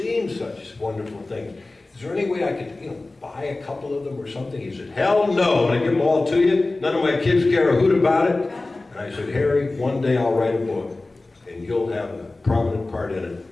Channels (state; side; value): quieter; right; 3.1 dB